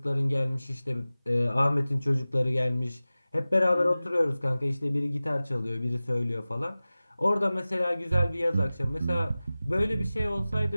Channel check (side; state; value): both; inverted; correlation -0.97